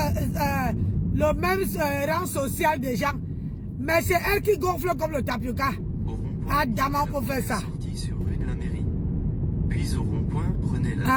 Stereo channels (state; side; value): identical; both; correlation 1.00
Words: rang social des gens. Mais c'est elle qui gonfle comme le tapioca. Adama pour faire ça. Sortie sur rue de la mairie. Puis au rond-point, prenez